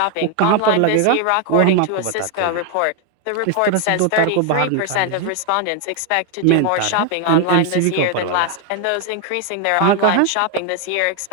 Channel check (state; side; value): different; both; correlation 0.01